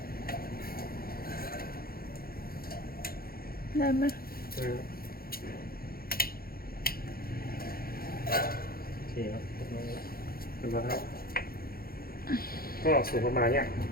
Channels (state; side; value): late; right; 0.43 ms